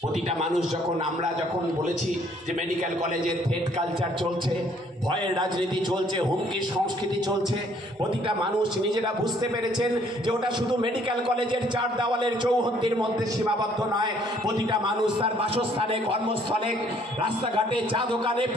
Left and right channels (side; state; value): both; normal; correlation 0.63